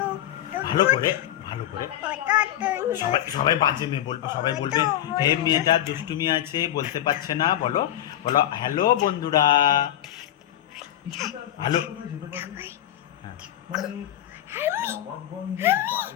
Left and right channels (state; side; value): quieter; right; 12.4 dB